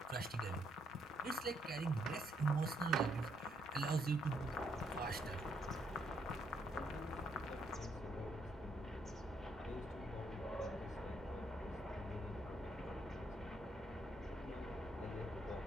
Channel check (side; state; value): both; normal; correlation 0.73